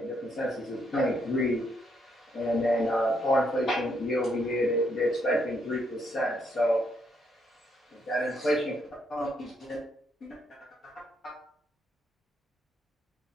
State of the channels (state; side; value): normal; both; correlation 0.75